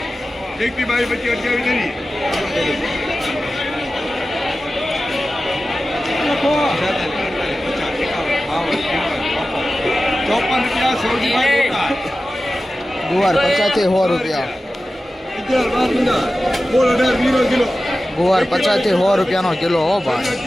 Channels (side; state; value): both; normal; correlation 0.95